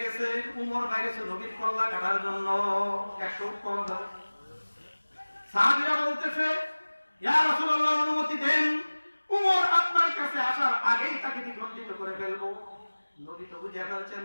গেছে, উমর বাইরেছে নবীর কল্লা কাটার জন্য 100 উপকরণ ধরে। সাহাবীরা বলতেছে, ইয়া রাসূলুল্লাহ, অনুমতি দেন, উমর আপনার কাছে আসার আগেই তাকে দ্বিখণ্ডিত করে ফেলবো। নবী তো বুঝে ফেলছেন,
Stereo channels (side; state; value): both; inverted; correlation -1.00